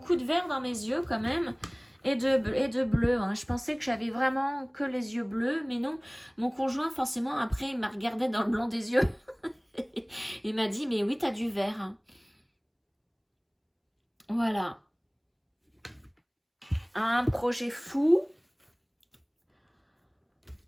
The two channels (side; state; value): both; identical; correlation 1.00